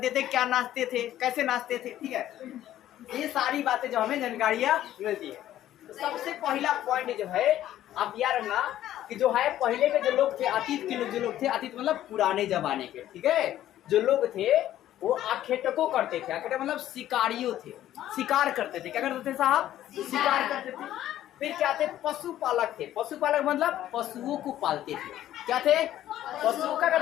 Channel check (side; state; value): right; quieter; 12.7 dB